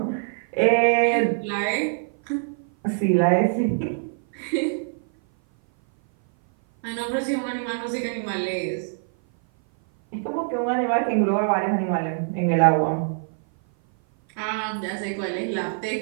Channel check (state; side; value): silent; left; 57 dB below the other